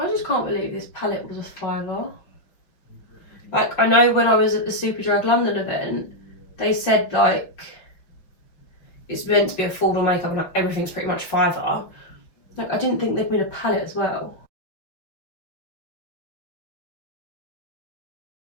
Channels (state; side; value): late; right; 5.8 ms